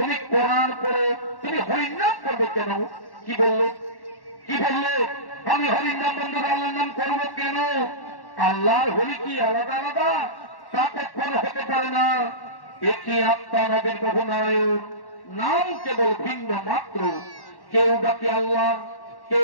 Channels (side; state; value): right; late; 1.1 ms